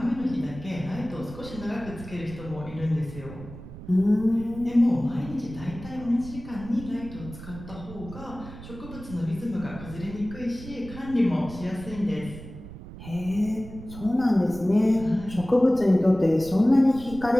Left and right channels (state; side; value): noise; right; rumble, 14 dB below the sound